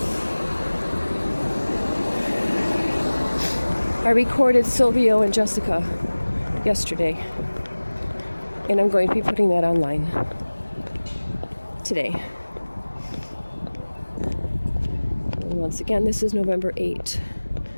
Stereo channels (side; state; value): both; inverted; correlation -1.00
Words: I recorded Sylvia and Jessica yesterday. And I'm going to be putting that online today. And once again, this is November 8th,